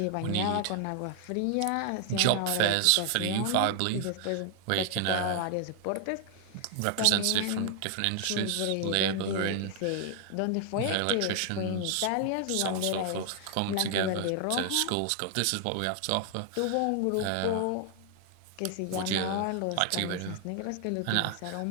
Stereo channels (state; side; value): different; both; correlation 0.00